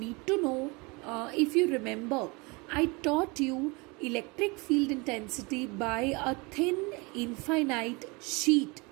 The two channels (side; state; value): left; quieter; 27.3 dB